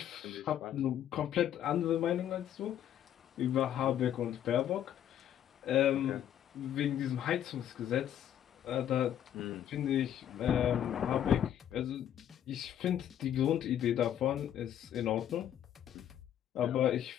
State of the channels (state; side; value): quieter; right; 10.6 dB